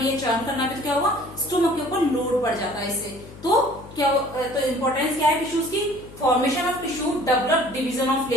है, चर्न करना भी, तो क्या होगा, स्टोमक के ऊपर लोड पड़ जाता है इससे। तो क्या, तो इंपॉर्टेंस क्या है टिश्यूज की, formation of tissue develop division of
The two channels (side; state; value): left; noise; hum, 18 dB below the sound